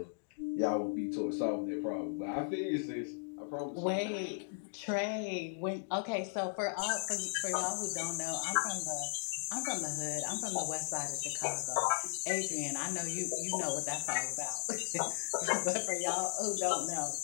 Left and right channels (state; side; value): silent; right; digital silence